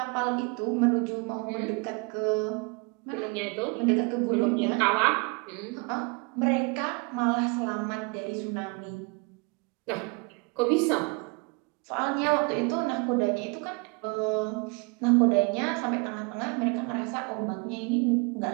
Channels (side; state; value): left; quieter; 29.7 dB